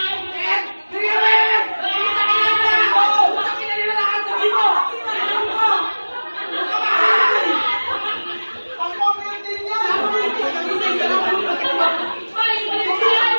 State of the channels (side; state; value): both; inverted; correlation -1.00